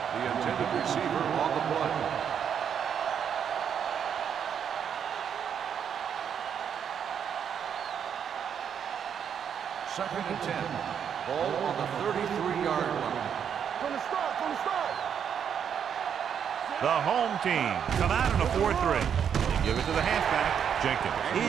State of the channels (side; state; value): left; quieter; 8.0 dB